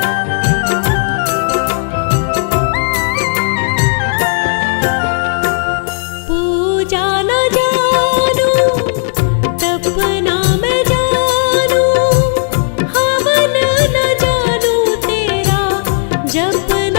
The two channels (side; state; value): right; silent; digital silence